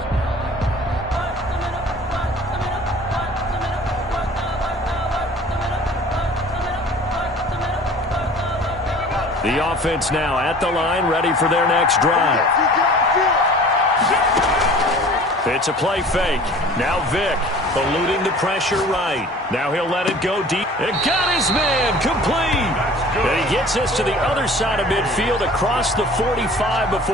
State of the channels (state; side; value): normal; both; correlation 0.46